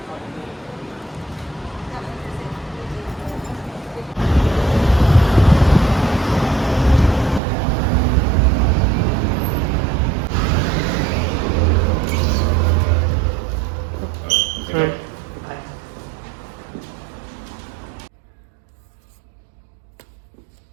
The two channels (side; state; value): left; drops out; at 7.4 s